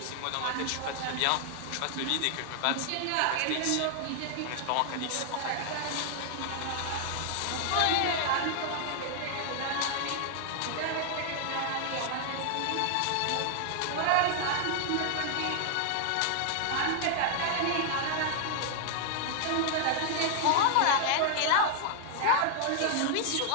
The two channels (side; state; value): both; different; correlation 0.00